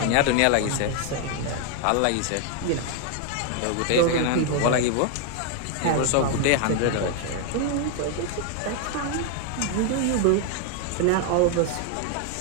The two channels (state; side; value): different; both; correlation 0.00